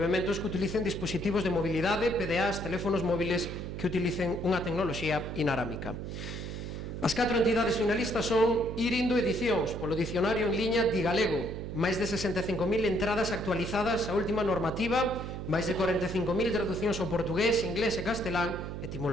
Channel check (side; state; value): right; noise; hum, 6 dB below the sound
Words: que utilicen dispositivos de mobilidade, PDAs, teléfonos móviles que utilicen unha tecnoloxía inarámica. As 4 entidades finalistas son Irindo Edicións, polo dicionario en liña Digalego, máis de 65.000 entradas actualizadas á última normativa, máis de 45.000 traducións ao portugués, inglés e castelán,